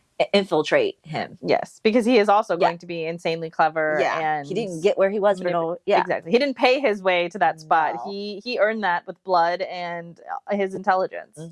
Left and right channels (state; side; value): identical; both; correlation 1.00